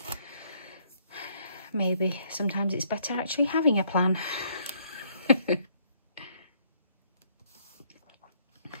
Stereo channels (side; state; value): both; inverted; correlation -0.67